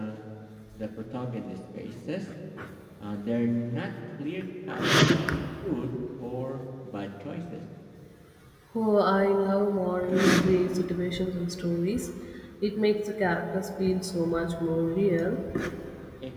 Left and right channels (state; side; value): identical; both; correlation 1.00